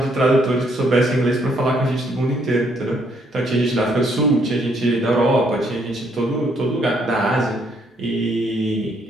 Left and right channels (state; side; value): normal; both; correlation 0.70